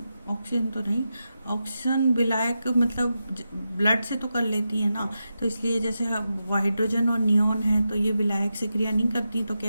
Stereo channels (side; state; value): both; inverted; correlation -0.89